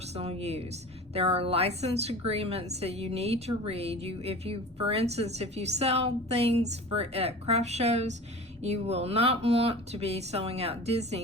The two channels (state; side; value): normal; both; correlation 0.37